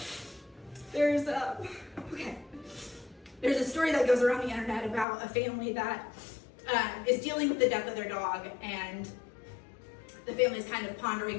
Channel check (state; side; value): drops out; right; at 5.1 s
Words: there's a story that goes around the internet about a family that is dealing with the death of their dog, and the family is kind of